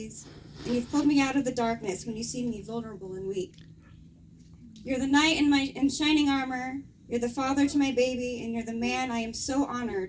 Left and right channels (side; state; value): both; identical; correlation 1.00